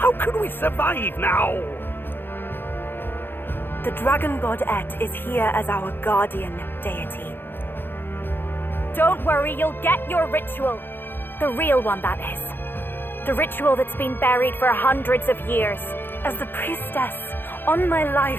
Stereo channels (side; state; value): right; late; 0.10 ms